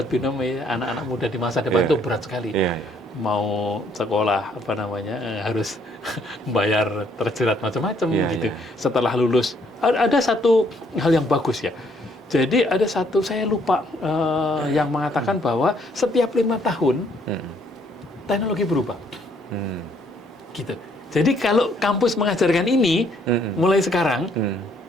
binom anak-anak muda di masa depan itu berat sekali. Mau sekolah harus bayar terjerat macam-macam gitu. Setelah lulus ada satu hal yang bagus ya. Jadi ada satu saya lupa yang mengatakan bahwa setiap 5 tahun teknologi berubah. Gitu. Jadi kalau kampus mengajarkan ini mulai sekarang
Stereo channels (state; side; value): normal; both; correlation 0.67